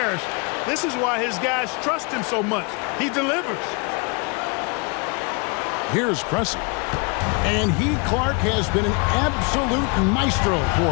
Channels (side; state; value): right; quieter; 32.1 dB